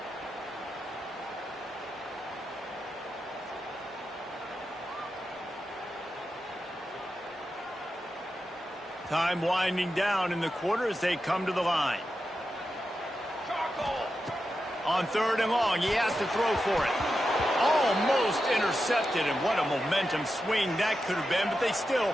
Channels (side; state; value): both; normal; correlation 0.89